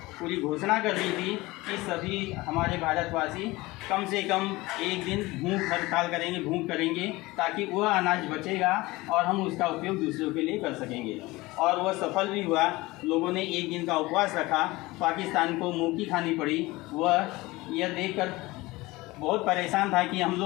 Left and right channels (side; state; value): right; quieter; 20.8 dB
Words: पूरी घोषणा कर दी थी कि सभी हमारे भारतवासी कम से कम 1 दिन भूख हड़ताल करेंगे, भूख करेंगे, ताकि वह अनाज बचेगा और हम उसका उपयोग दूसरों के लिए कर सकेंगे। और वह सफल भी हुआ। लोगों ने 1 दिन का उपवास रखा। पाकिस्तान को मुँह की खानी पड़ी। वह यह देखकर बहुत परेशान था कि हम